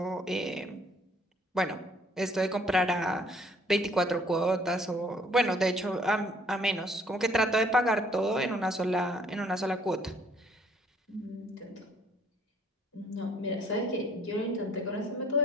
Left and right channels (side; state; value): both; normal; correlation 0.61